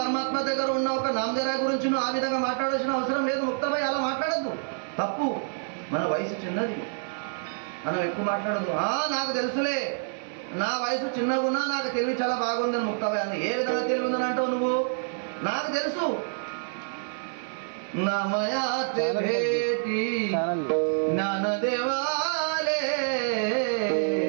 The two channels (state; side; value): silent; left; 60 dB below the other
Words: దగ్గర ఉన్న ఒక నామదేవ్ రాయ్ గురించి నువ్వు ఆ విధంగా మాట్లాడాల్సిన అవసరం లేదు. ముక్తాబాయి అలా మాట్లాడద్దు, తప్పు. మన వయసు చిన్నది, మనం ఎక్కువ మాట్లాడదు. నాకు తెలుసులే, నా వయసు చిన్నగా ఉన్నా నాకు తెలివి చాలా బాగుందని ముక్తాబాయి అన్న. ఏ విధంగా తెలివి ఉందని అంటావు నువ్వు? నాకు తెలుసు. నమయాతే భేటి జ్ఞానదేవాలే